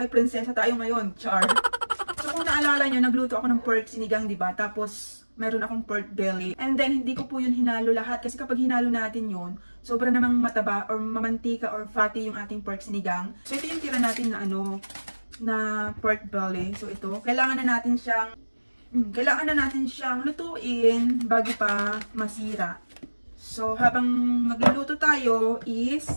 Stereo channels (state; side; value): inverted; both; correlation -1.00